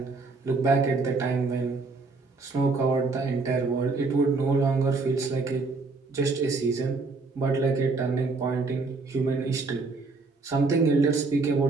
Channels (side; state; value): left; quieter; 3.9 dB